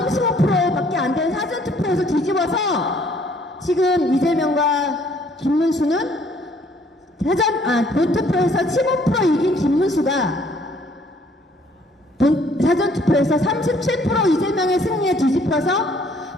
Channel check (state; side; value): normal; both; correlation 0.62